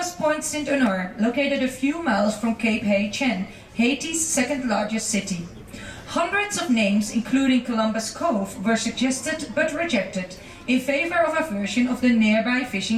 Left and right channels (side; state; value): both; identical; correlation 1.00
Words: Point Saint-Honor, located a few miles from Cape Hay-Chen, Haiti's second largest city. Hundreds of names, including Columbus Cove, were suggested but rejected in favor of a version of the nearby